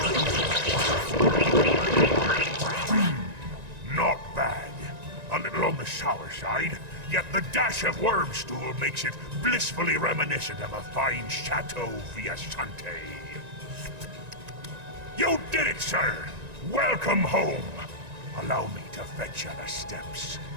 Not bad. A little on the sour side, yet the dash of worm stool makes it blissfully reminiscent of a fine Chateau Viasante. You did it, sir! Welcome home! Allow me to fetch you the steps.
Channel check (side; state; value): left; late; 1.9 ms